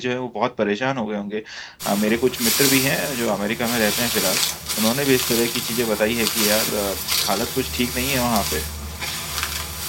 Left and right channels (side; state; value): both; identical; correlation 1.00